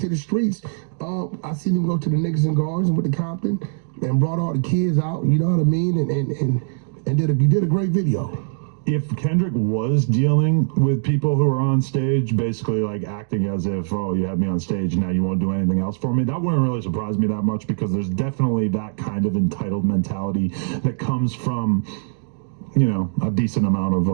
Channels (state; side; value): silent; left; digital silence